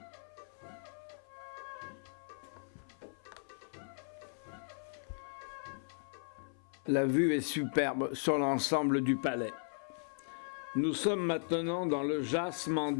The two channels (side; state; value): right; silent; 53 dB below the other